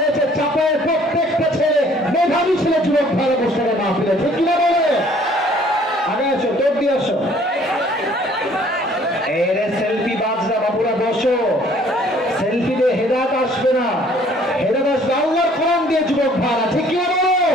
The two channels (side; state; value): both; normal; correlation 0.57